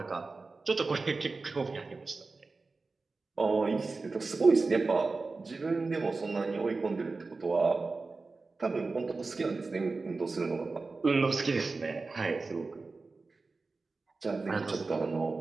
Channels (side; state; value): left; quieter; 3.9 dB